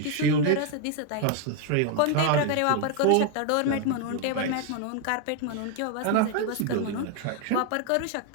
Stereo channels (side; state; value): both; different; correlation 0.01